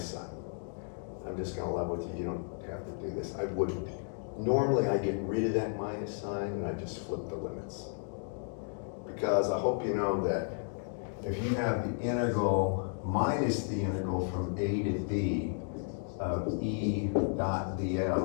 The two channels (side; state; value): right; silent; 56 dB below the other